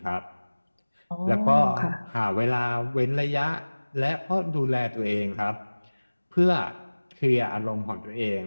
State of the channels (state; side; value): inverted; both; correlation -1.00